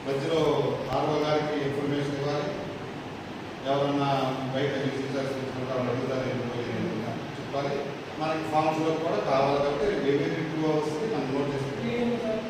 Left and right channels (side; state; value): both; identical; correlation 1.00